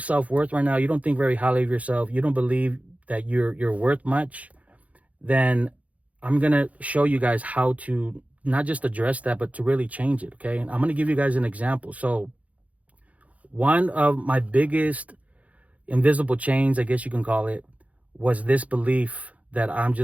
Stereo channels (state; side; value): late; left; 0.068 ms